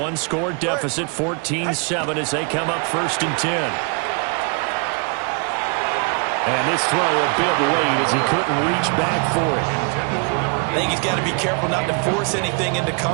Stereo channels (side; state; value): left; quieter; 36.3 dB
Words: deficit, 14-7, as they come up 1st and 10. And this throw a bit late as he couldn't reach back for it. I think he's got to be careful not to force anything into